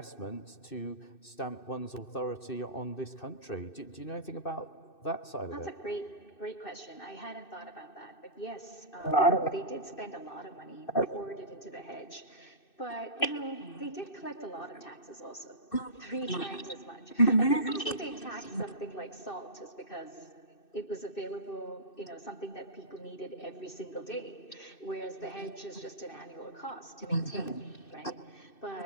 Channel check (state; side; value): late; right; 2.6 ms